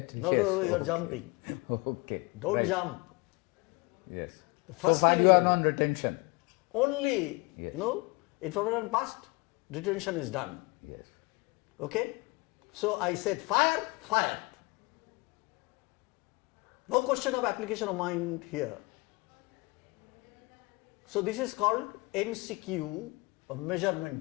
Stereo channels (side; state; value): right; quieter; 26.2 dB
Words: No, yes. no, you are jumping. Okay. Don't right. jump. Yes. The first so far thing you are is on retention. only, Yes. information passed, retention is done. Yes. Okay? So I said fire, fired. No question of application of mind here. So this is called MCQ, a